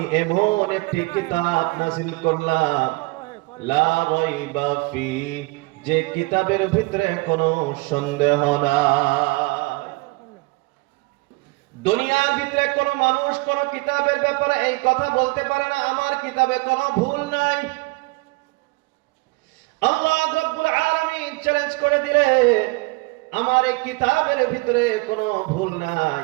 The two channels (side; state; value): left; quieter; 25.3 dB